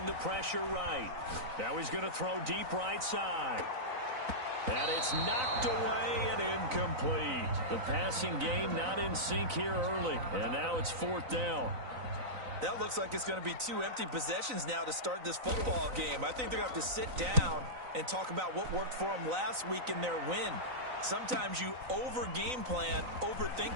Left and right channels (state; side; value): late; left; 3.9 ms